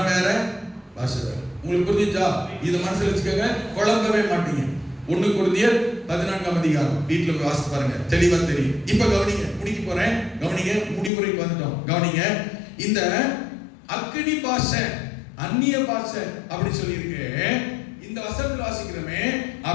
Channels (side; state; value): right; drops out; at 11.1 s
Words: வேற, பாஷை வேற. உங்களுக்கு புரிஞ்சுச்சா? இது மனசுல வச்சுக்கோங்க, குழம்பவே மாட்டீங்க. 1 கொரிந்தியர் 14ஆம் அதிகாரம் வீட்டுல போய் வாசித்து பாருங்க, தெளிவா தெரியும். இப்ப கவனிங்க, முடிக்க போறேன். கவனிங்க, முடிவுரைக்கு வந்துட்டோம். கவனிங்க, இந்த அக்கினி பாஷை, அந்நிய பாஷை அப்படி சொல்லி இருக்கு. இந்த வசனத்தில் வாசிக்கிறோமே,